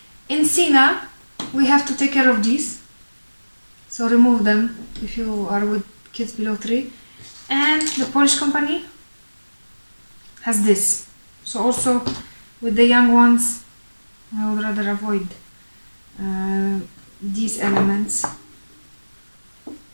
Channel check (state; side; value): inverted; both; correlation -1.00